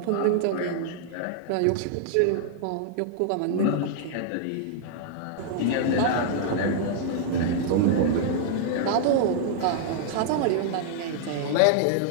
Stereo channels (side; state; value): both; different; correlation -0.01